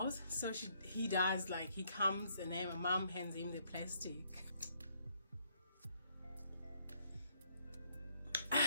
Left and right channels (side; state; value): both; inverted; correlation -0.70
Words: So he does. Like, he comes, and then my mom hands him the plastic.